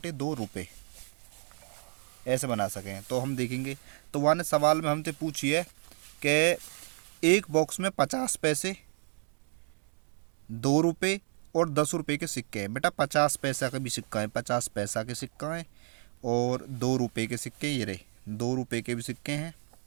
रुपये, ऐसे बना सकें। तो हम देखेंगे, तो वहाँ ने सवाल में हमसे पूछी है कि एक बॉक्स में 50 पैसे, 2 रुपये और 10 रुपये के सिक्के हैं। बेटा 50 पैसा का भी सिक्का है, 50 पैसा के सिक्का है, और 2 रुपये के सिक्के ये रहे, 2 रुपये के भी सिक्के हैं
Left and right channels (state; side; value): quieter; left; 39.2 dB